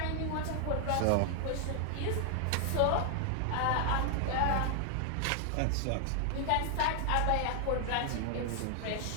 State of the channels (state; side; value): different; both; correlation 0.00